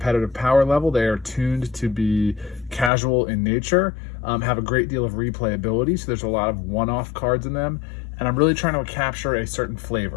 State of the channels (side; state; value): right; drops out; at 2.9 s